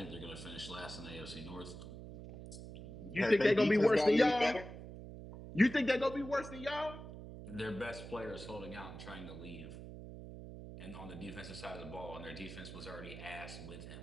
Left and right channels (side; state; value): right; noise; hum, 11 dB below the sound